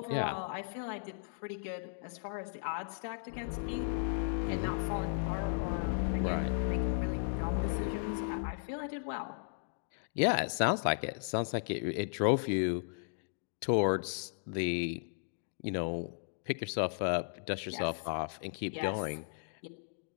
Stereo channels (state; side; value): silent; right; digital silence